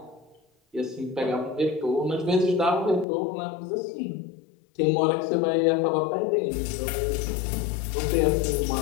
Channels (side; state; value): right; drops out; at 3.1 s